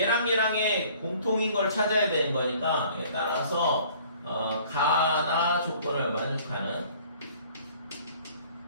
공통인 걸 찾아야 되는 거니까 따라서 가나 조건을 만족하는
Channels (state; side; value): inverted; both; correlation -0.53